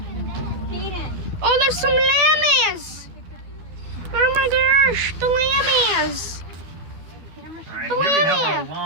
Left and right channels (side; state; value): left; late; 12 ms